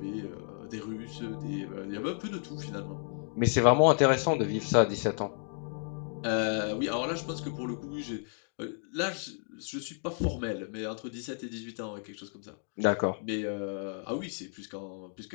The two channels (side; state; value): right; silent; 56 dB below the other